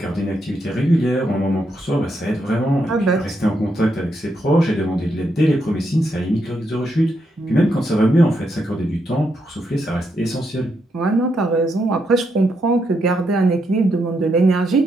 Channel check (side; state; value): both; normal; correlation 0.80